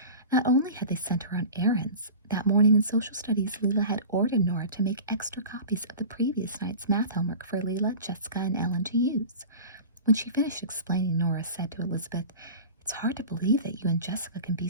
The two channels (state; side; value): inverted; both; correlation -0.35